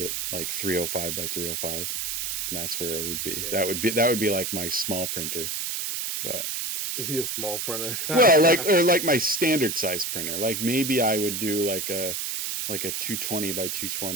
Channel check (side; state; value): right; noise; hiss, 2 dB below the sound